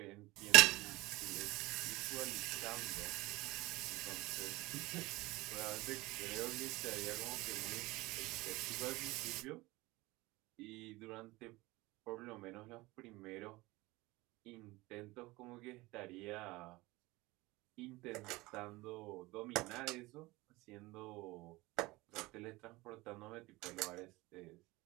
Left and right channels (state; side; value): quieter; left; 21.1 dB